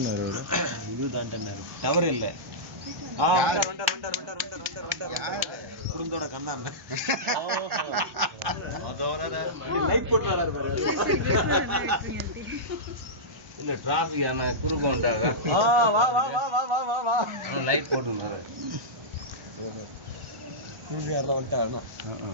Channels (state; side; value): normal; both; correlation -0.15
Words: இது தாண்டாரு, டவர் இல்லை. குடும்பத்தோட கண்ணாம லைட் போட்டு வராரு பாரு. இல்ல டிராபிக் ஆனா குறுக்க வந்தாங்க. வா வா வா வா வா வா வா லைட் போட்டுனாரு.